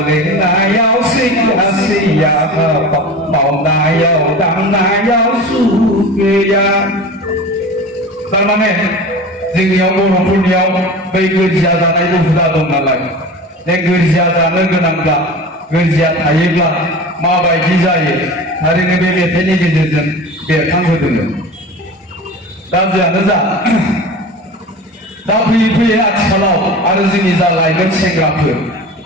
लोंनायाव सैया सैया मावनायाव दांनायाव सुख गैया थारमाने जोंनियाव बर'फोरनियाव बै गोरजिया जानायबो हुदा दं नालाय बे गोरजिया जानो गोनांब्ला गोरजिया थायोब्ला माबायदि जायो थारैनो बे मेथाइनि गेजेरजों बेरखांहोदोंमोन दा जियानो जा दा फैयै फैयै आथिखालाव आरो जोंनि जा लाइमोन सेंग्राफोर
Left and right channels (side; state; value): both; normal; correlation 0.34